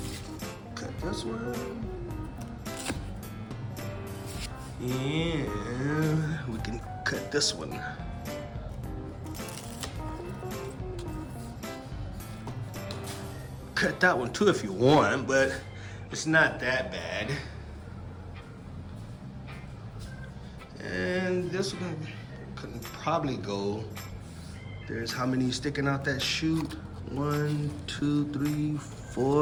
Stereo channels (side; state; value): both; identical; correlation 1.00